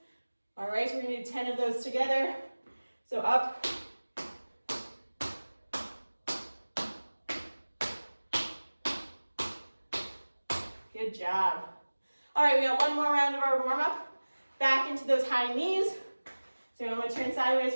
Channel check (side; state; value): both; inverted; correlation -1.00